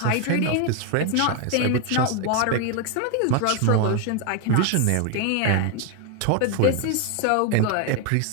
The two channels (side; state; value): both; different; correlation 0.01